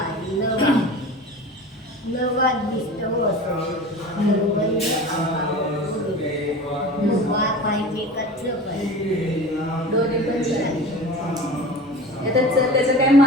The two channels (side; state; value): both; normal; correlation 0.36